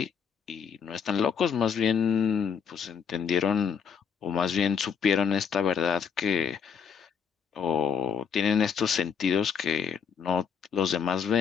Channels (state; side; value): quieter; right; 6.9 dB